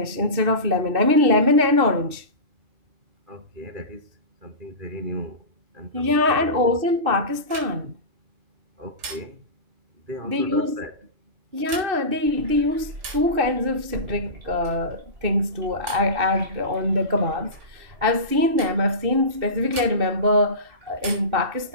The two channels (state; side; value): late; left; 2.7 ms